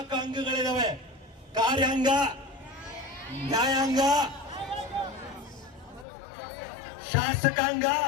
ಅಂಗಗಳಿದಾವೆ: ಕಾರ್ಯಾಂಗ, ನ್ಯಾಯಾಂಗ, ಶಾಸಕಾಂಗ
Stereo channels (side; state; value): right; drops out; at 6.1 s